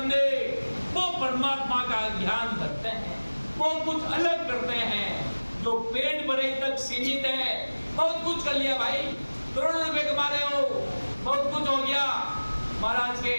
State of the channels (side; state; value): both; inverted; correlation -1.00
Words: वो परमात्मा का ध्यान रखते हैं, वो कुछ अलग करते हैं। जो पेट भरे तक सीमित है, बहुत कुछ कर लिया भाई, करोड़ों रुपए कमा रहे हो, बहुत कुछ हो गया। महाराज के